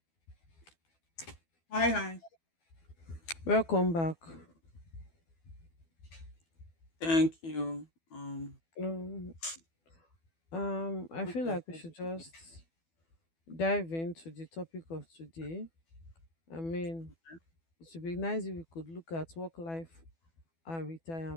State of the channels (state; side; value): late; right; 12 ms